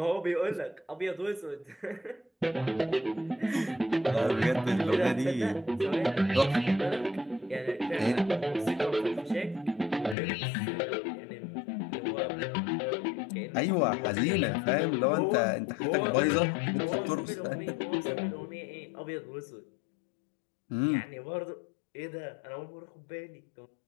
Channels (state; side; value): drops out; right; at 10.2 s